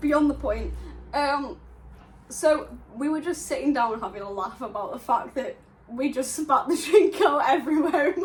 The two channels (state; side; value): identical; both; correlation 1.00